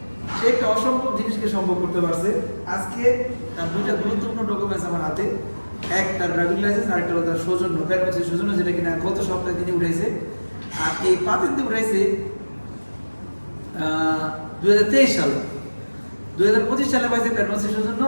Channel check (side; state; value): both; inverted; correlation -1.00